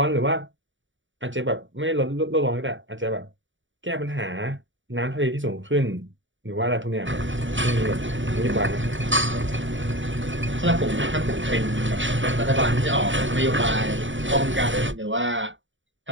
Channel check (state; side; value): late; left; 0.55 ms